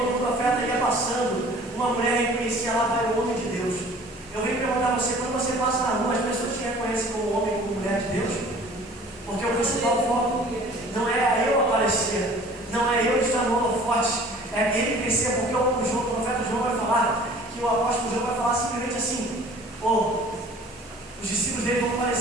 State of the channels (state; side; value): normal; both; correlation 0.49